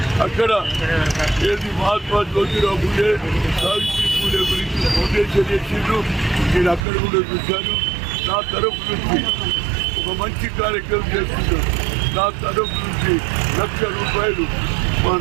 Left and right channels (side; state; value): left; drops out; at 6.9 s